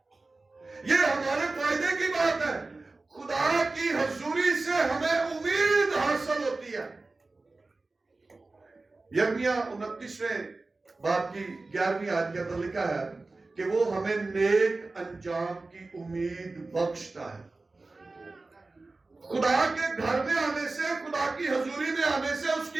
یہ ہمارے فائدے کی بات ہے۔ خدا کی حضوری سے ہمیں امید حاصل ہوتی ہے۔ یرمیہ 29ویں باب کی 11ویں آیت کے اندر لکھا ہے کہ وہ ہمیں نیک انجام کی امید بخشتا ہے۔ خدا کے گھر میں آنے سے، خدا کی حضوری میں آنے سے، اس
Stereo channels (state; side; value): quieter; left; 3.4 dB